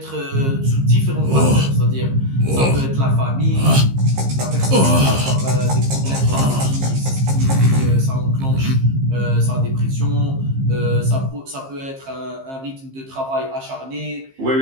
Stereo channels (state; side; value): late; left; 15 ms